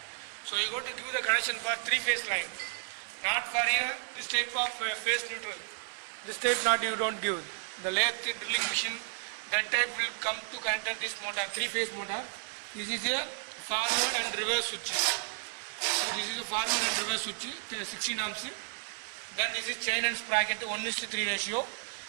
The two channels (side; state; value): left; silent; digital silence